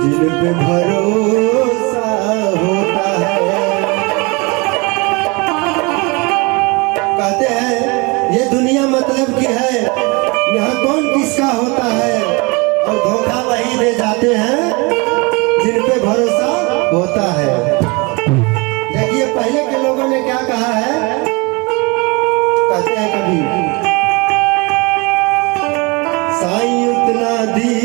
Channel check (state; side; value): quieter; left; 27.6 dB